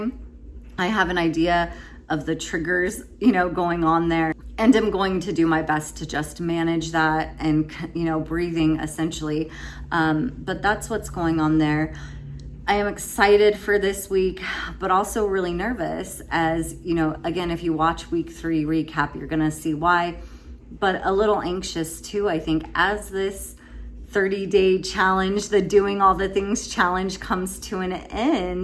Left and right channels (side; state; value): both; identical; correlation 1.00